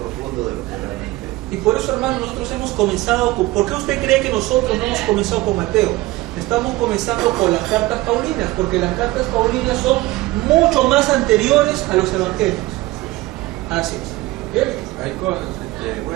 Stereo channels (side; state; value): left; quieter; 19.3 dB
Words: de lo que realmente. Y por eso, hermano, nosotros hemos comenzado con... ¿Por qué usted cree que nosotros no hemos comenzado con Mateo? Estamos comenzando con las cartas paulinas, porque las cartas paulinas son mucho más anteriores a los evangelios. Así es. ¿Bien? Hay cosas,